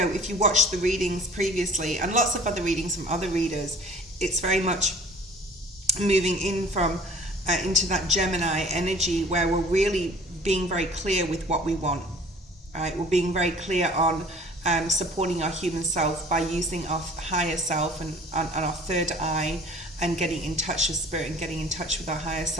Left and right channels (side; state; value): both; normal; correlation 0.48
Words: you watched the readings previously and lots of other readings from other readers, it's very much moving in from into that Gemini energy where we're really being very clear with what we want, right? We're being very clear on supporting our human self by using our higher self and our third eye and getting in touch with spirit and getting in touch with our higher